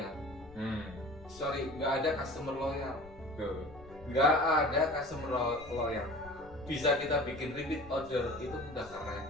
Sorry, nggak ada customer loyal. Nggak ada customer loyal. Bisa kita bikin repeat order itu udah keren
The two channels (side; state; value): left; noise; rumble, 20 dB below the sound